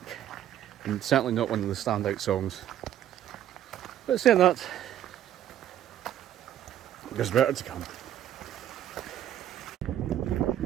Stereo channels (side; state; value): left; quieter; 11.3 dB